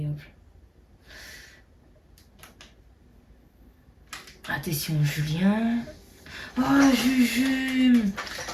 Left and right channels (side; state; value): both; identical; correlation 1.00